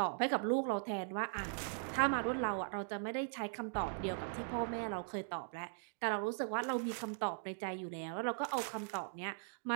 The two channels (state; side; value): silent; left; digital silence